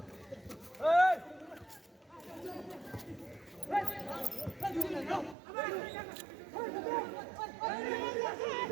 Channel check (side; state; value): left; drops out; at 5.4 s